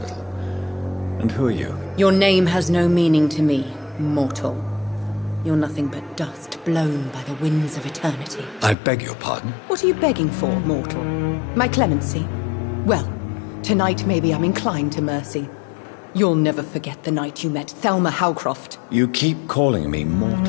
And who are you? Your name has no meaning to me, mortal. You're nothing but dust blown by the winds of eternity. I beg your pardon? What are you begging for, mortal? My clemency? Well, tonight maybe I'm inclined to mercy. You'll never forget the night you met Thelma Howcroft. You keep calling me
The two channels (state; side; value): drops out; right; at 8.8 s